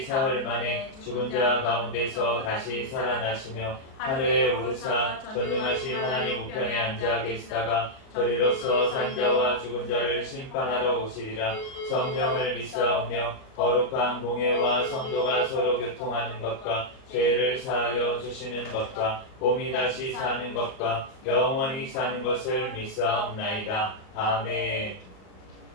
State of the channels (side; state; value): right; late; 38 ms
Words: 만에 죽은 자 가운데서 다시 살아나시며 하늘에 오르사 전능하신 하나님 우편에 앉아 계시다가 저리로서 산 자와 죽은 자를 심판하러 오시리라. 성령을 믿사오며 거룩한 공예와 성도가 서로 교통하는 것과 죄를 사하여 주시는 것과 몸이 다시 사는 것과 영원히 사는 것을 믿사옵나이다. 아멘.